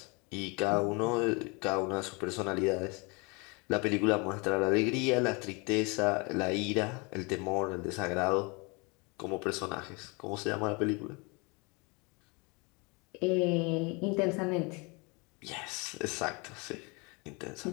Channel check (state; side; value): quieter; right; 29.1 dB